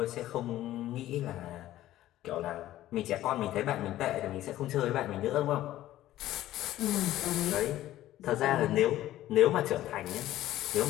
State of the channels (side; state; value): right; quieter; 14.2 dB